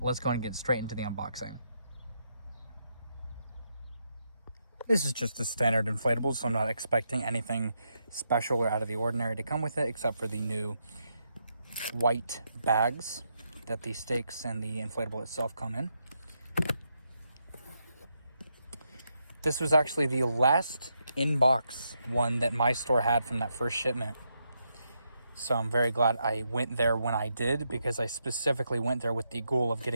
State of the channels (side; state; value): both; inverted; correlation -0.81